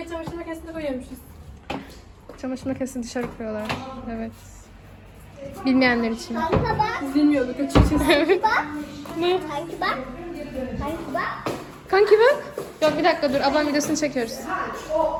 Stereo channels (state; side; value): identical; both; correlation 1.00